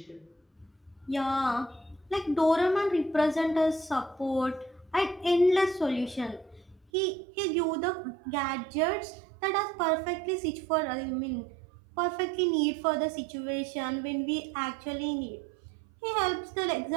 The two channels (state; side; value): drops out; left; at 6.9 s